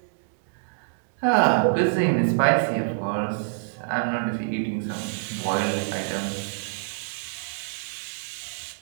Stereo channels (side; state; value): left; silent; digital silence